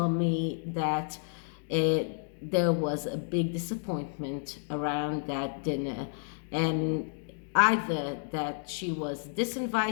me that there was a big disappointment around that dinner, and either that she was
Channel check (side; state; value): right; silent; digital silence